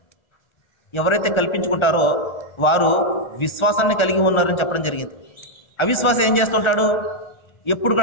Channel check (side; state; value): right; late; 1.3 ms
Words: ఎవరైతే కల్పించుకుంటారో వారు విశ్వాసాన్ని కలిగి ఉన్నారని చెప్పడం జరిగింది. అవిశ్వాసం ఏం చేస్తుంటాడు? ఎప్పుడు